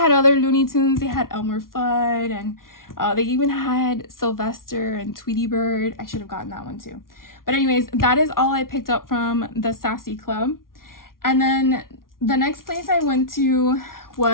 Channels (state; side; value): late; right; 0.92 ms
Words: other Looney Tunes. They had Elmer Fudd, and they even had Sylvester and Tweety Bird. I should have gotten that one too. But anyways, that is all I picked up from the Sassy Club. And then the next place I went to